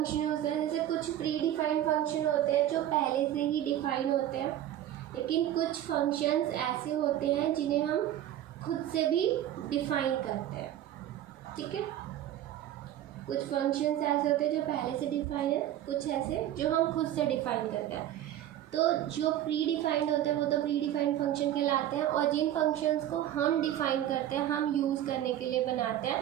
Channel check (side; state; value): left; quieter; 12.1 dB